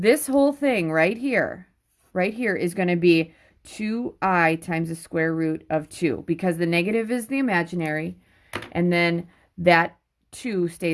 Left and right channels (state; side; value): identical; both; correlation 1.00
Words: whole thing right here is going to be 2i times the square root of 2, because the negative is the imaginary, and then that 2